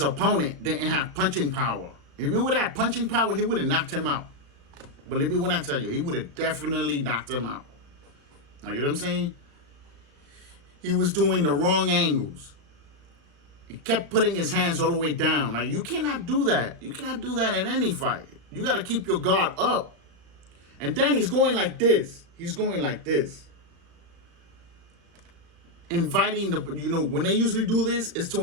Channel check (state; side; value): late; left; 35 ms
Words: didn't have punching power. If he would have had punching power, he would have knocked him out. Believe me when I tell you, he would have definitely knocked him out. Like, you know what I'm saying? He was doing the wrong angles. He kept putting his hands all the way down. Like, you cannot do that. You cannot do that in any fight. You got to keep your guard up. And then he's going like this. He's going like this. Inviting the, when they usually do this, is to